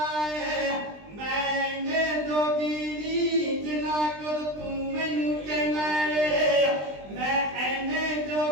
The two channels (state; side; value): late; left; 20 ms